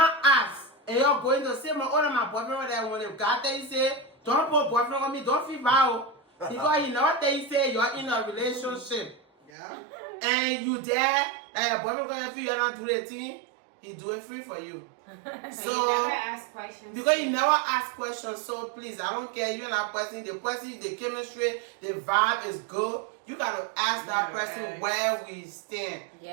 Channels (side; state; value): left; drops out; at 9.5 s